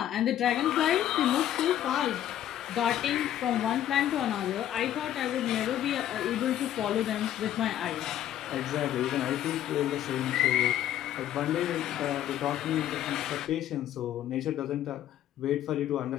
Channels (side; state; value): right; quieter; 11.7 dB